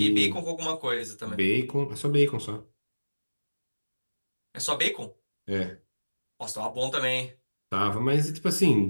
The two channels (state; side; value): inverted; both; correlation -1.00